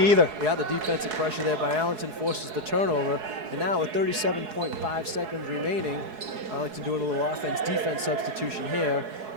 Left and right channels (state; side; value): late; left; 4.7 ms